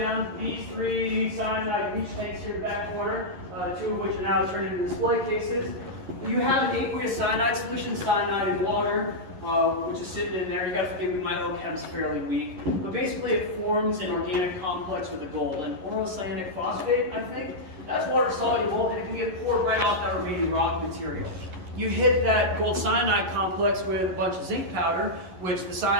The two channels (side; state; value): left; late; 11 ms